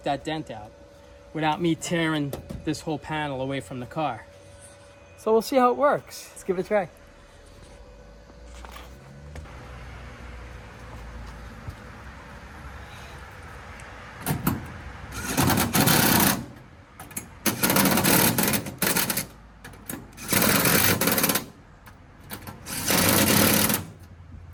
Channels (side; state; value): both; identical; correlation 1.00